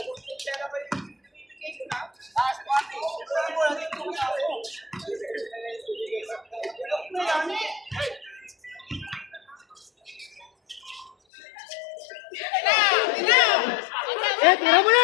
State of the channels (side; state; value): right; drops out; at 11.1 s